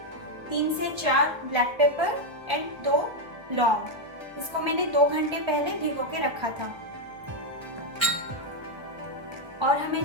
3 से 4 ब्लैक पेपर एंड 2 लौंग। इसको मैंने 2 घंटे पहले भिगो के रखा था। और हमें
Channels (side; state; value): left; late; 1.3 ms